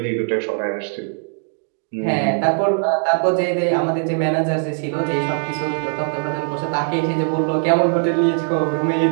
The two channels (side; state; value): left; silent; 55 dB below the other